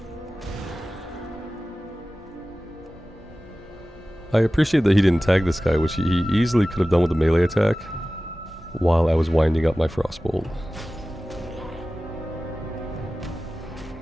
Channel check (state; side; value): normal; both; correlation 0.96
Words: I appreciate that he didn't tag this guy, which he easily could have done with a melee attack while I was winding up my Frostbolt.